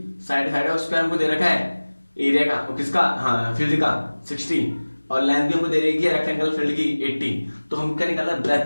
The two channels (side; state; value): both; inverted; correlation -1.00